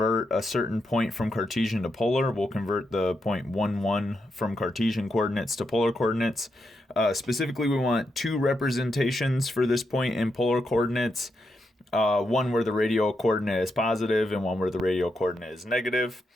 a certain point from Cartesian to polar. We'll convert the point 1, 1 from Cartesian coordinates to polar coordinates. Specifically, we want two representations for this point in polar coordinates. One where the radial coordinate is positive and one where the radial coordinate is negative.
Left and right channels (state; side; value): normal; both; correlation 0.83